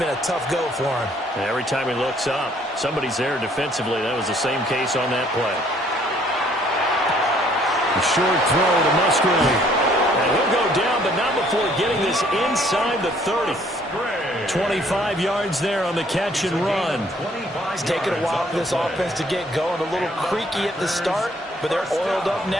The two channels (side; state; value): both; normal; correlation 0.62